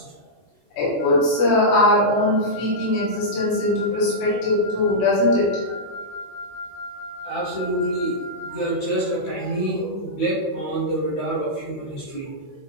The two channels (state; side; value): late; right; 18 ms